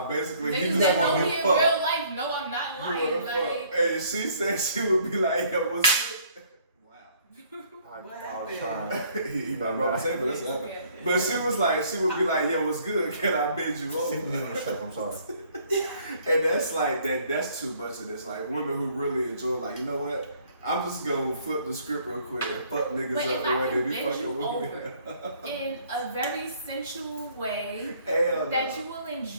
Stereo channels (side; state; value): both; inverted; correlation -0.61